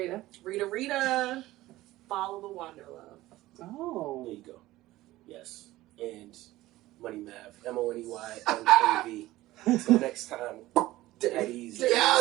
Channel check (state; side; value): quieter; left; 17.0 dB